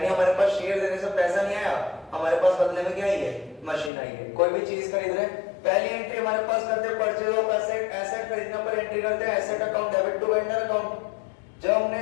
हमारे पास शेयर देने से पैसा नहीं आया, हमारे पास बदले में क्या आई है? मशीन आई है। कोई भी चीज खरीद रहे, पहली एंट्री हमारे पास करते हैं परचेज ऑफ एसेट, एसेट खरीदने पर एंट्री करते हैं asset account debit to vendor account. जब हमने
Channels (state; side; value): drops out; right; at 3.9 s